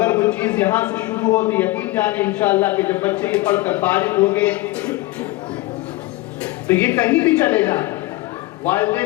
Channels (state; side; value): quieter; right; 19.5 dB